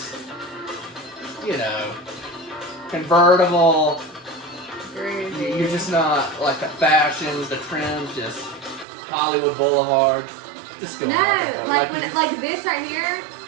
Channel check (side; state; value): left; drops out; at 8.8 s